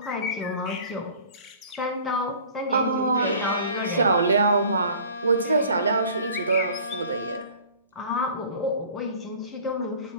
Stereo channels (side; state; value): both; inverted; correlation -0.47